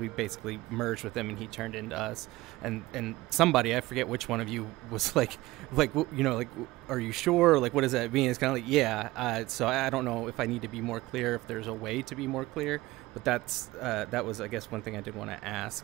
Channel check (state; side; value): quieter; left; 18.9 dB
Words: basically merged with him and he turned into us. And somebody, I forget which one of you, was like are you sure? Like, what does that mean? It's kind of like, yeah. So I don't know if I need to be more clear, if there's a way to be more clear. But that was, I guess, one thing I did want to ask.